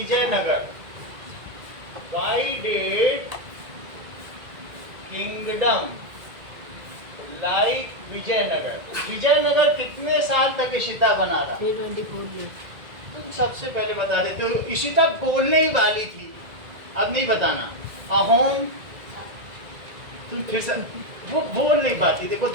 why did kingdom like Vijayanagara? Vijayanagara कितने साल तक इशिता बना रहा? 324 years. तुम सबसे पहले बता देते हो. इशिता बोलने ही वाली थी, अब नहीं बताना. अहोम तुम फिर से वो बोल नहीं पाती. देखो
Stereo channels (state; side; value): late; left; 2.0 ms